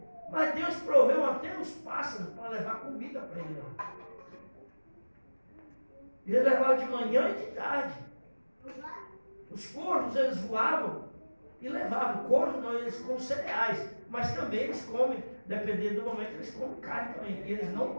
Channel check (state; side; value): inverted; both; correlation -1.00